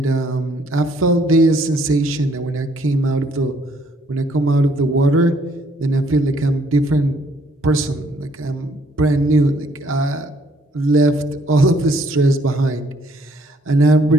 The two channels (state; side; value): normal; both; correlation 0.65